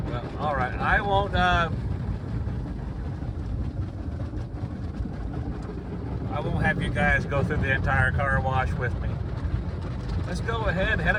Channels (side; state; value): both; identical; correlation 1.00